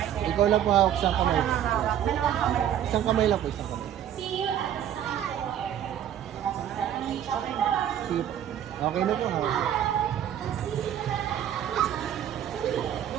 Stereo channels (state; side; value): quieter; left; 10.3 dB